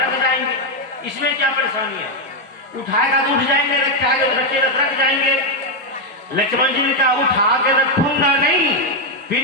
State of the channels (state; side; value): normal; both; correlation 0.02